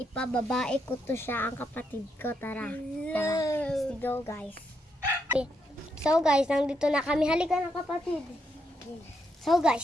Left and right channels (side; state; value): both; normal; correlation 0.79